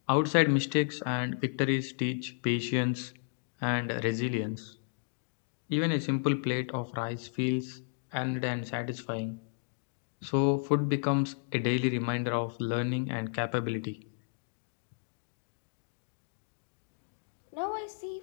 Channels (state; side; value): silent; right; digital silence